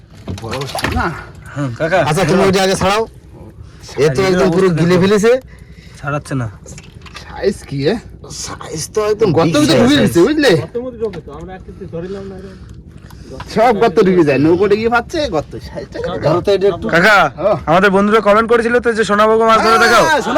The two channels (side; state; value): both; identical; correlation 1.00